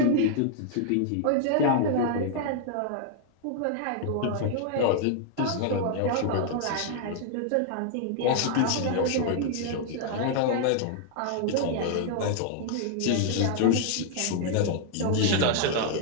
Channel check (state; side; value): different; both; correlation 0.00